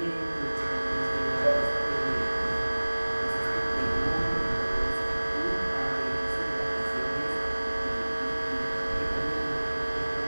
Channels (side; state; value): both; inverted; correlation -1.00